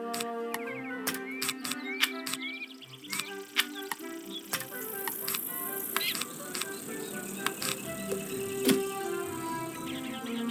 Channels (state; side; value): identical; both; correlation 1.00